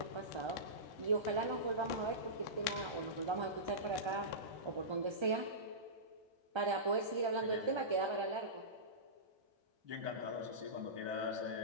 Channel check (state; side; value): late; left; 1.3 ms